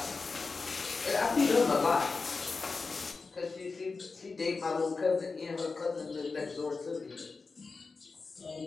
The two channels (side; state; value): right; quieter; 4.3 dB